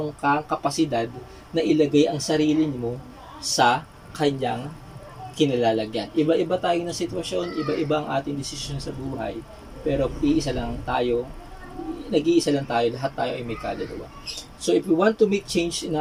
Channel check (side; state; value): both; identical; correlation 1.00